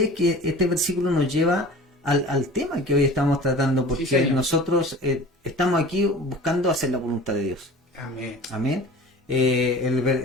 es que este versículo nos lleva al tema que hoy estamos tratando, porque Sí, señor. nosotros estamos aquí buscando hacer la voluntad de Dios. Amén. Amén.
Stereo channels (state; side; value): normal; both; correlation 0.40